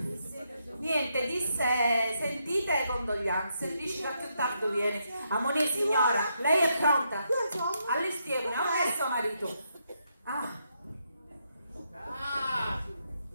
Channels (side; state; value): both; inverted; correlation -0.79